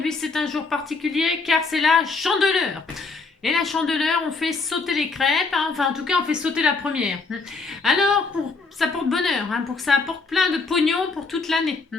c'est un jour particulier car c'est la Chandeleur. Et la Chandeleur, on fait sauter les crêpes, hein. Enfin en tout cas on fait sauter la première. Alors ça porte bonheur, hein, pour que ça apporte plein de pognon pour toute l'année.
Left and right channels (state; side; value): quieter; right; 4.2 dB